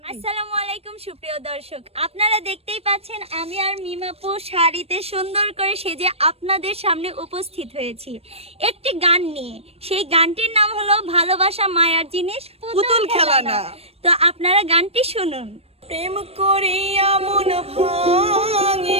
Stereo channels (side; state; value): left; late; 0.29 ms